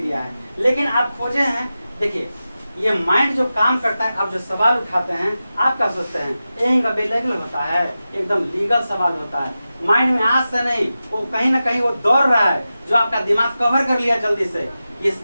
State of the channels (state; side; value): inverted; both; correlation -0.93